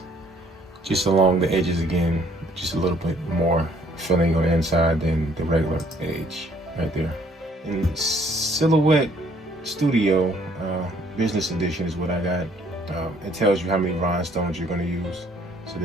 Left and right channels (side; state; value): both; normal; correlation 0.62